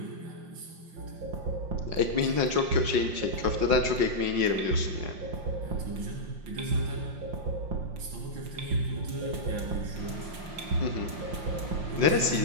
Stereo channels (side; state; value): left; late; 5.7 ms